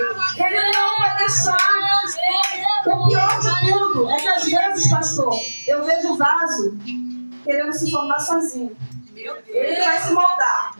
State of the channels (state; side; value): inverted; both; correlation -1.00